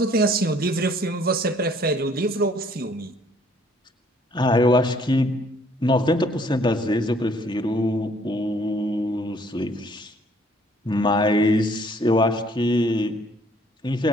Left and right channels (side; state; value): both; normal; correlation 0.60